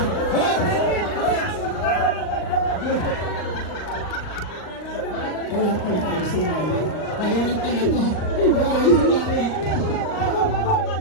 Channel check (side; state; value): right; late; 39 ms